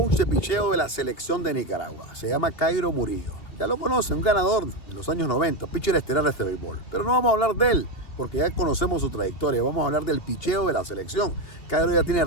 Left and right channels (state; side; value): late; right; 2.8 ms